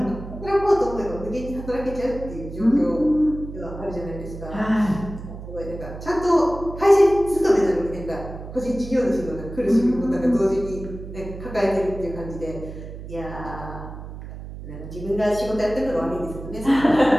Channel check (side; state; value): right; noise; hum, 11 dB below the sound